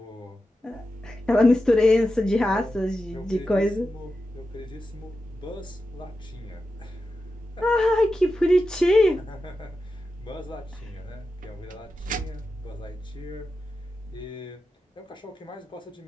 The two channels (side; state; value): both; normal; correlation 0.90